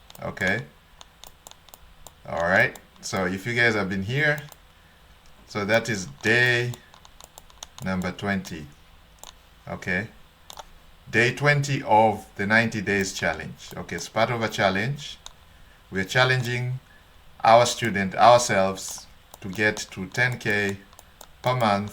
Okay. All right. So if you guys have been here, so that is day number 20. Okay. Day 20 of the 90 days challenge. Okay, it's part of a challenge. We're challenging our student, ourselves, to get to 10K per month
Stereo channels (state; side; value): identical; both; correlation 1.00